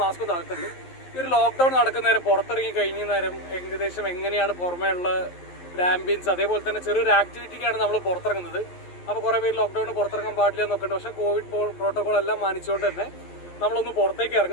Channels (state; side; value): late; right; 11 ms